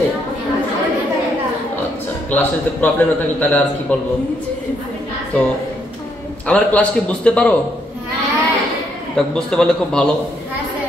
আচ্ছা, ক্লাসে যদি প্রবলেম না থাকে তাহলে আর কি বলবো। তো আমার ক্লাস কি বুঝতে পারো? তা বুঝতে পারলে খুব ভালো,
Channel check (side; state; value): both; normal; correlation 0.74